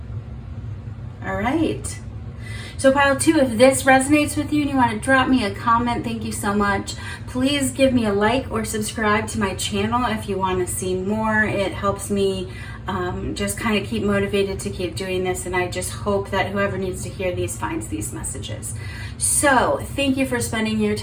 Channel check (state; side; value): identical; both; correlation 1.00